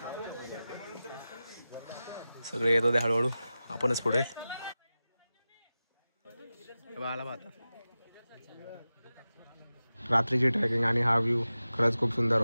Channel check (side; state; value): both; inverted; correlation -0.95